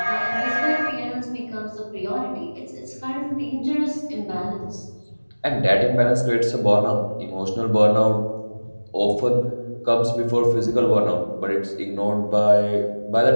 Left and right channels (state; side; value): inverted; both; correlation -1.00